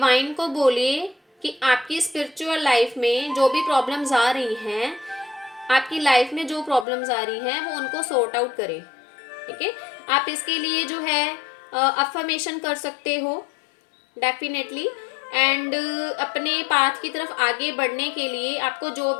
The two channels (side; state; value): right; drops out; at 6.9 s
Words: को बोलिए कि आपकी स्पिरिचुअल लाइफ में जो भी प्रॉब्लम्स आ रही हैं, आपकी लाइफ में जो प्रॉब्लम्स आ रही हैं वो उनको सॉर्ट आउट करें। ठीक है, आप इसके लिए जो है अफर्मेशन कर सकते हो डेफिनेटली। एंड अपने पाथ की तरफ आगे बढ़ने के लिए आपको जो